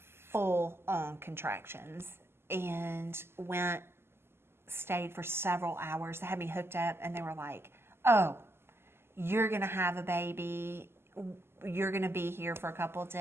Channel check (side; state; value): left; late; 0.12 ms